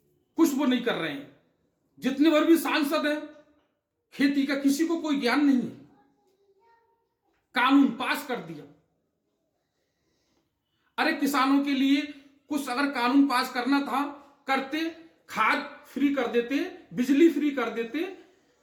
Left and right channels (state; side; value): identical; both; correlation 1.00